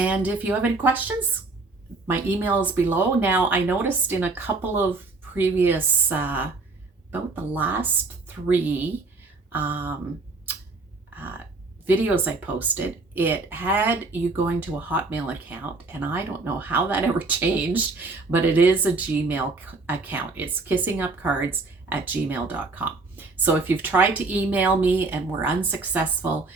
if you have any questions, my email is below. Now, I noticed in a couple of previous, about the last 3 videos I posted, it had you going to a Hotmail account, and I don't know how that ever changed, but it is a Gmail account. It's kissingupcards@gmail.com. So if you've tried to email me and were unsuccessful,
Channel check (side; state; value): left; quieter; 3.6 dB